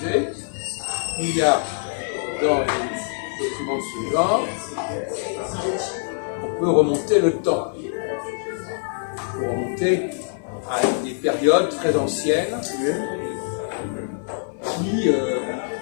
il y a dans les documents de ce genre, on peut remonter le temps. On peut remonter à des périodes très anciennes qui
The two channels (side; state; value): right; silent; 58 dB below the other